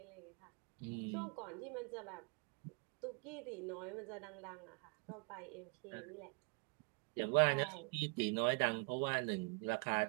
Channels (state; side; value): quieter; left; 35.1 dB